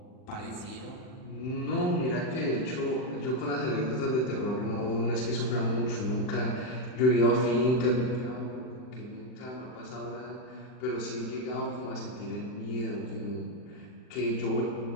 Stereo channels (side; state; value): right; late; 39 ms